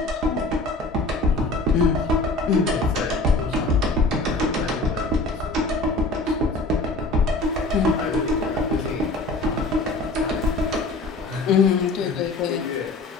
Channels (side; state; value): right; quieter; 3.0 dB